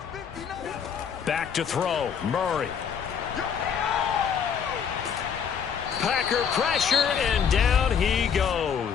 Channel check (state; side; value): quieter; right; 7.3 dB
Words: Back to throw. Murray. Packer pressure, and down he